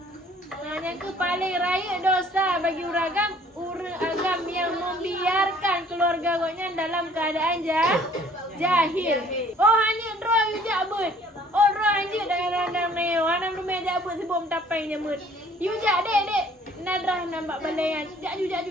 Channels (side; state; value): both; normal; correlation 0.56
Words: Yang ke paling raya dosa bagi orang agam yang membiarkan keluarga goknya dalam keadaan jahil. Oh hanya roh yujak but. Oh roh hanya dalam neo. Anam rumah jabut sebelum tapai nyamut. Yujak dek. Nadrah nampak balayan.